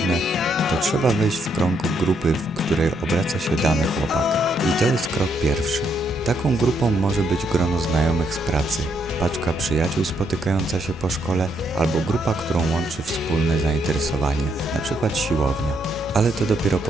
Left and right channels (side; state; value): both; normal; correlation 0.75